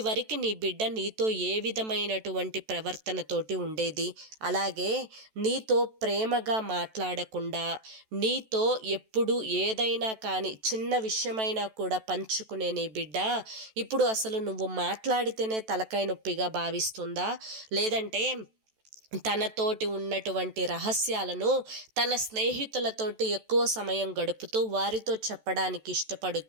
నీ బిడ్డ నీతో ఏ విధమైనటువంటి ప్రవర్తనతోటి ఉండేది? అలాగే నీతో ప్రేమగా మాట్లాడకుండా, నీతో ఎప్పుడు ఏదైనా కానీ చిన్న విషయమైనా కూడా పంచుకునే నీ బిడ్డ ఇప్పుడు అసలు నువ్వు మాట్లాడితేనే తలకాయ నొప్పిగా భావిస్తుందా? లేదంటే తనతోటి ఉన్నటువంటి రహస్యాలను తన స్నేహితులతోటి ఎక్కువ సమయం గడుపుతూ వారితో చెప్పడానికి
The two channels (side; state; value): left; late; 14 ms